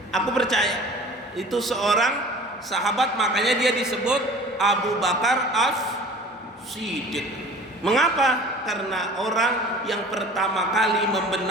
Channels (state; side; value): normal; both; correlation 0.44